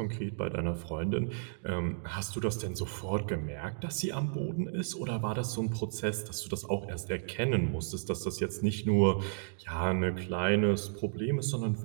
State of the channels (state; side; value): silent; left; digital silence